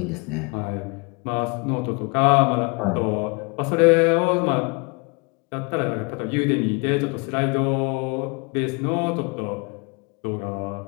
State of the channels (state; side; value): quieter; right; 31.0 dB